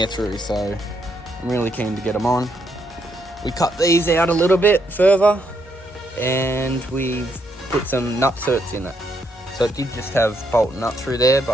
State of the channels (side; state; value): both; normal; correlation 0.76